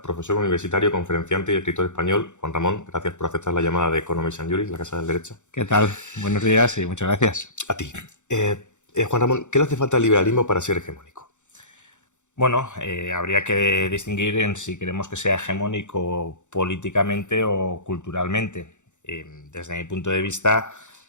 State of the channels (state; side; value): late; right; 0.84 ms